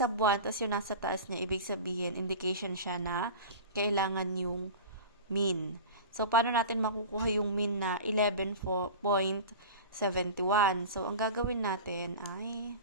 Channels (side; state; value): both; inverted; correlation -0.32